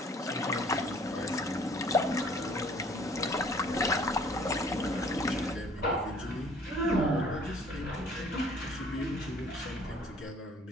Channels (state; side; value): normal; both; correlation 0.55